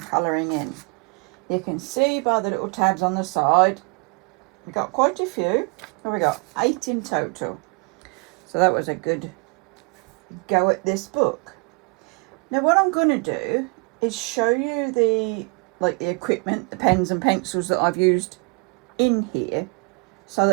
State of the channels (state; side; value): quieter; left; 33.8 dB